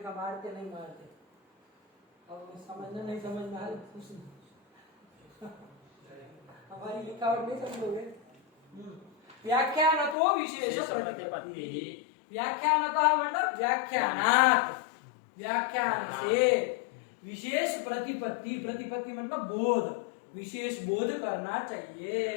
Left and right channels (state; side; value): drops out; right; at 10.2 s